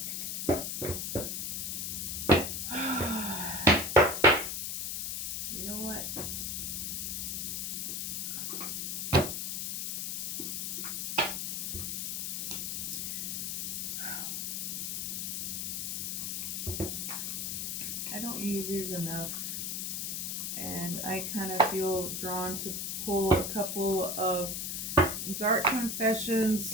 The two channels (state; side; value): noise; left; hiss, 2 dB below the sound